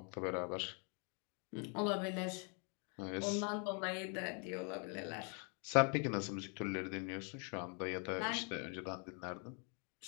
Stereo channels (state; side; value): quieter; right; 37.5 dB